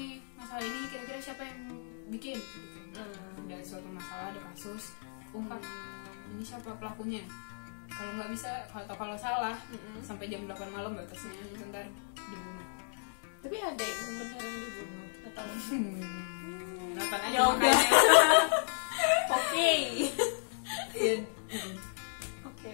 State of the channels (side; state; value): right; silent; digital silence